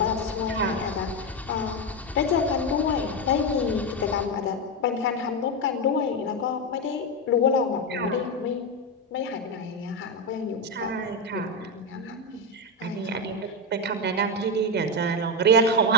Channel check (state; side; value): normal; both; correlation 0.08